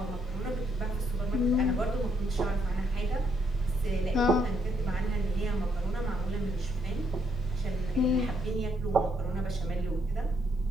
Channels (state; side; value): normal; both; correlation 0.73